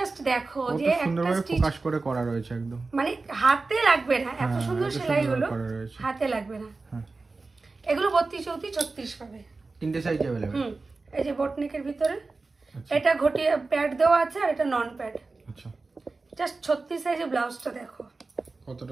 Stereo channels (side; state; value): left; quieter; 3.7 dB